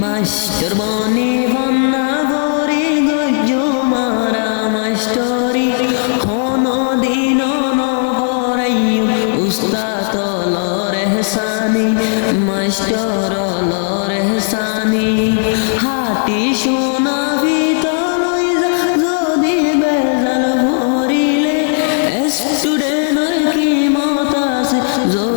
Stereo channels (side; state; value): right; silent; 63 dB below the other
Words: মাস্টার বনি বন্যা ভরি গজ্জ মারা মাস্টরি, হনো দিন নবরাইয়ু উস্তাদ হলো রেহসানি, মাস্টার হলো রেহসানি। হাতি সোনা ভিতর যদি বেজাল ভরিলে, স্টুডেন্টের কি মত আছে